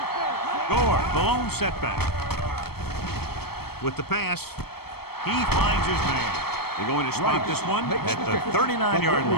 play. Gore, the lone setback. With the pass, he finds his man. They're going to spike this one at the 39-yard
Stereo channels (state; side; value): late; right; 0.96 ms